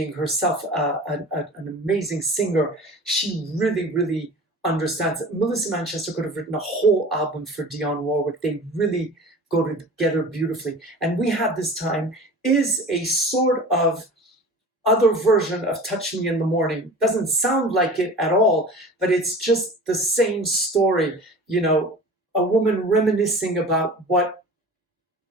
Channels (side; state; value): both; normal; correlation 0.38